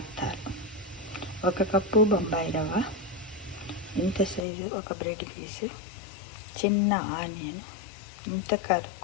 1 కప్పు బొంబాయి రవ్వ, ఇంత సైజు ఒక బ్రెడ్ పీసు, చిన్న ఆనియన్, ఇంత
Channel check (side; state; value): right; drops out; at 4.5 s